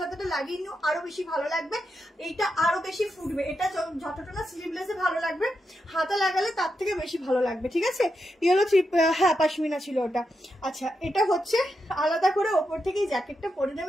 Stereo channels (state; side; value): normal; both; correlation 0.85